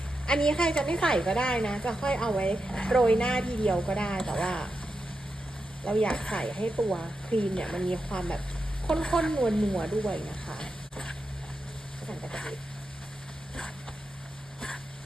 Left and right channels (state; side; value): normal; both; correlation 0.88